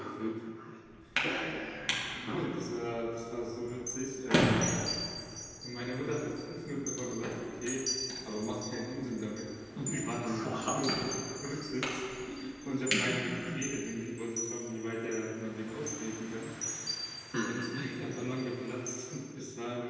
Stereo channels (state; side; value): identical; both; correlation 1.00